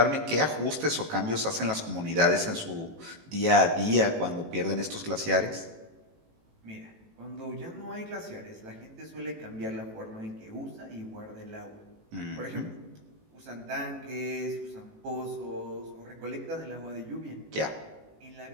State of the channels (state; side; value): late; left; 18 ms